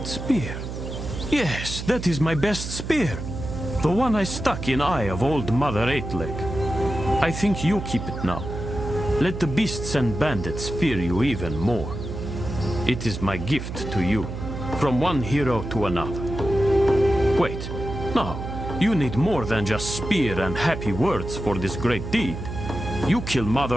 spear. Yes, that is my best spear. The one I stuck in eye of old Mother Eightleg. I think you keep it now. Let the beasts and bandits fear you even more. It is my gift to you, from one hero to another. Wait, no, you need more than just spear and happy words for this great deed. You kill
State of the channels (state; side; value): noise; right; hum, 7 dB below the sound